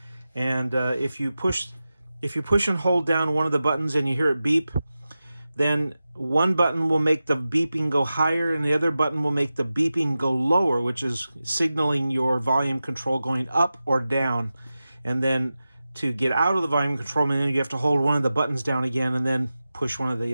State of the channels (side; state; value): both; inverted; correlation -0.93